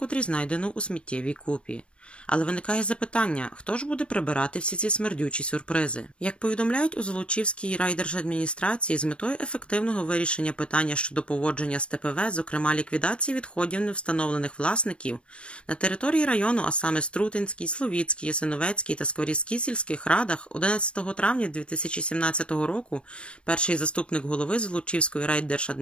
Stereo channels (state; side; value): late; right; 0.058 ms